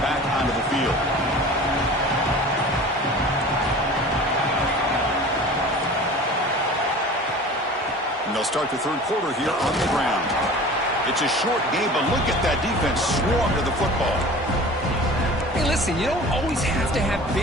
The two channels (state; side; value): normal; both; correlation 0.40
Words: onto the field. They'll start the third quarter here on the ground. It's a short game, but look at that defense swarm to the football. Hey, listen. listen, you don't always have to have